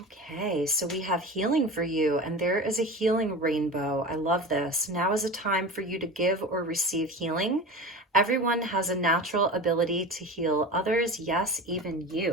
okay, so we have healing for you, and there is a healing rainbow. I love this. Now is a time for you to give or receive healing. Everyone has a natural ability to heal others, yes, even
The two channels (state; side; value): normal; both; correlation 0.31